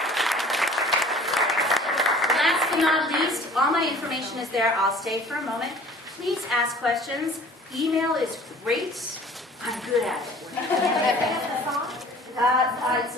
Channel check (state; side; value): normal; both; correlation 0.49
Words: Last but not least, all my information is there. I'll stay for a moment. Please ask questions. Email is great. I'm good at it. It's